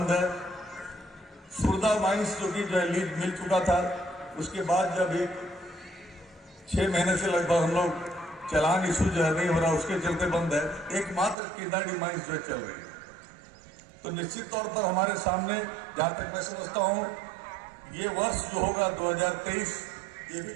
है। सुरदा माइंस जो कि जो है लीज मिल चुका था, उसके बाद जब एक 6 महीने से लगभग हम लोग चालान इशू जो है नहीं हो रहा, उसके चलते बंद है। एकमात्र किंदाडी माइंस जो है चल रही है। तो निश्चित तौर पर हमारे सामने जहां तक मैं समझता हूं ये वर्ष जो होगा 2023 ये भी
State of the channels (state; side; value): drops out; left; at 11.4 s